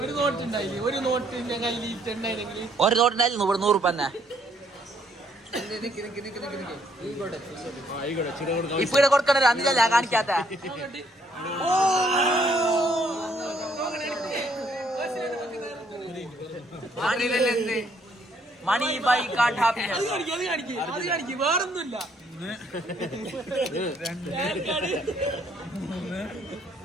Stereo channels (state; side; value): normal; both; correlation 0.68